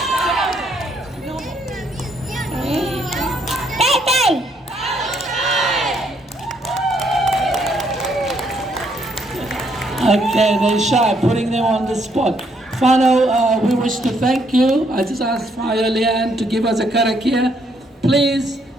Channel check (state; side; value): normal; both; correlation 0.71